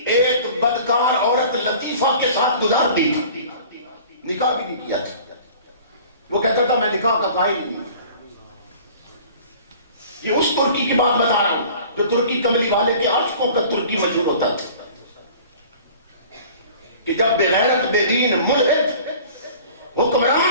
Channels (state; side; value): inverted; both; correlation -0.46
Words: ایک بدکار عورت لطیفہ کے ساتھ گزار دی تھی، نکاح بھی نہیں کیا تھا. وہ کہتا تھا میں نکاح کا قائل نہیں. یہ اس ترکی کی بات بتا رہا ہوں جو ترکی کملی والے کے عاشقوں کا ترکی مشہور ہوتا تھا کہ جب بغیرت بے دین ملحد